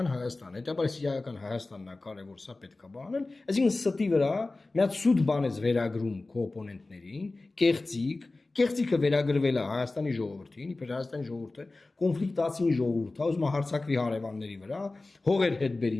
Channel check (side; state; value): right; quieter; 3.2 dB